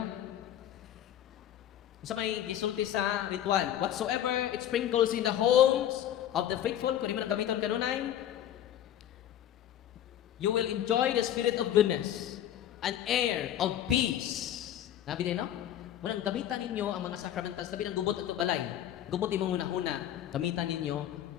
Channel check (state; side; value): quieter; right; 11.3 dB